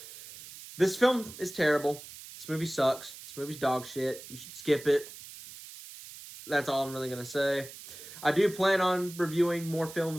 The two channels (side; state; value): right; noise; hiss, 15 dB below the sound